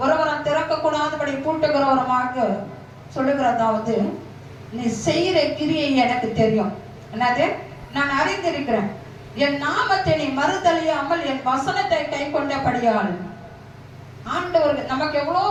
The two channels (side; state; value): both; identical; correlation 1.00